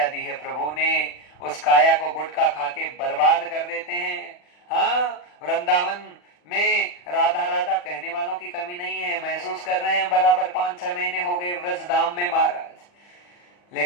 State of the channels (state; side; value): late; right; 40 ms